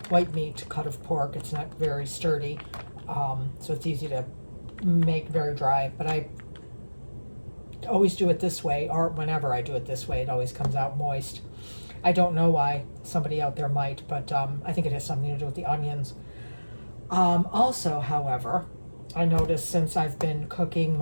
white meat cut of pork. It's not very sturdy, so it's easy to make very dry, but I always do it this way, or whenever I do it this way, it always comes out moist. I don't know why. Somebody out there might, but I think it has something to do with the onions. Also, however, I noticed since I've been cooking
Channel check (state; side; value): inverted; both; correlation -1.00